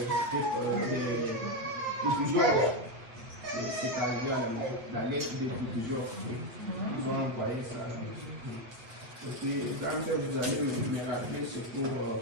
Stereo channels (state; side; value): late; left; 8.4 ms